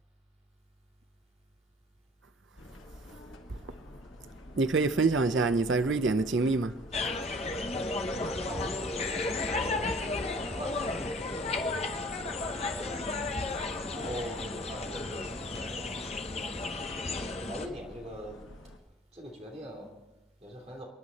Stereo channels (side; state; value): both; normal; correlation 0.50